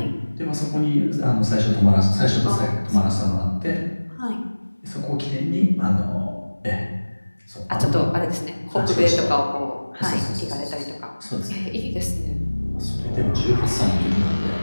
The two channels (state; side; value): inverted; both; correlation -1.00